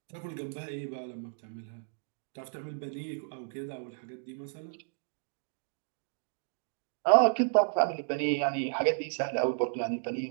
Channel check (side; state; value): left; silent; digital silence